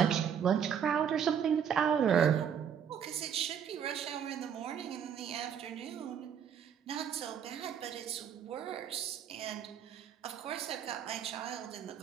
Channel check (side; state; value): left; quieter; 8.2 dB